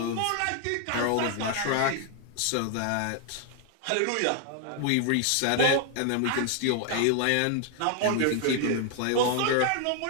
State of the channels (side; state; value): both; different; correlation 0.00